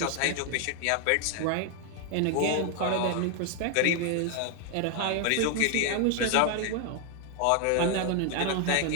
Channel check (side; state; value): both; different; correlation 0.00